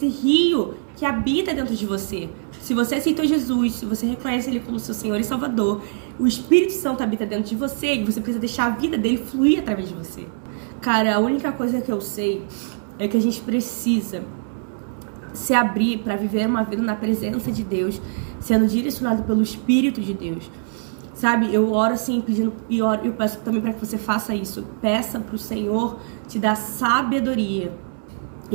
rio que habita dentro de você. Se você aceitou Jesus, se você reconhece Ele como seu Senhor e Salvador, o Espírito Santo habita dentro de você e você precisa deixar a vida dele fluir através de você. Cara, a única coisa que eu sei é que a gente precisa se abrir para viver uma vida na presença de Deus, sendo direcionado pelo Espírito de Deus. sabe? Eu oro assim, pedindo, e eu peço também para que você faça isso. Peça pro Senhor te dar sabedoria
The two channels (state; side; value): silent; left; 64 dB below the other